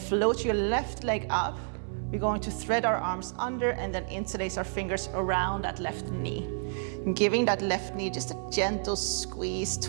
your left leg up. We're going to thread our arms under and then interlace our fingers around that left knee. And giving that left knee just a gentle squeeze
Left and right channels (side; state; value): left; silent; 58 dB below the other